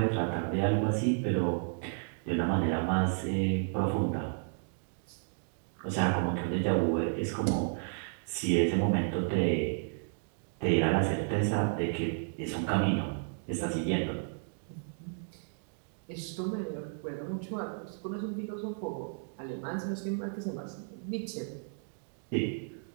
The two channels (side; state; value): left; silent; digital silence